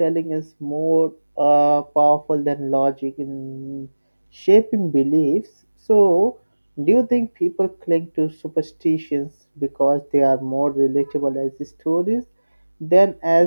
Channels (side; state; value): both; inverted; correlation -1.00